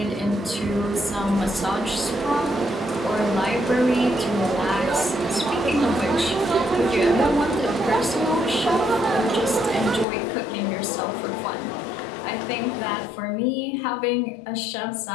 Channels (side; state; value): right; drops out; at 10.1 s